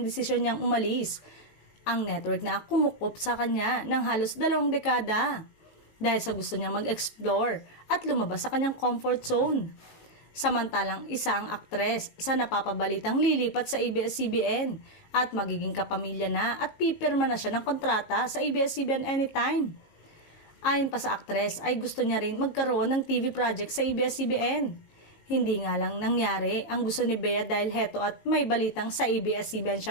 desisyon niyang umalis. Ang network na kumukup sa kanya ng halos 2 dekada dahil sa gusto niyang mag-explore at lumabas sa kanyang comfort zone. Samantalang isa ang aktres sa napapabalitang lilipat sa ABS-CBN at magiging kapamilya na at pipirma na siya ng kontrata sa ABS-CBN anytime. Ayon pa sa aktres ay gusto niya rin magkaroon ng TV project sa ABS-CBN. Hindi nga lang nangyari ang gusto ni Bea dahil heto at may balitang sa ABS-CBN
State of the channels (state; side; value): late; right; 18 ms